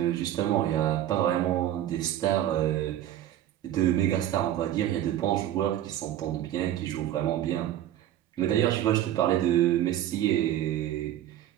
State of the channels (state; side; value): quieter; left; 12.1 dB